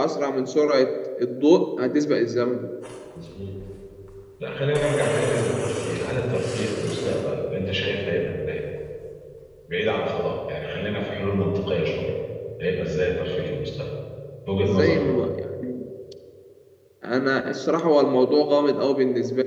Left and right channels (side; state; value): both; identical; correlation 1.00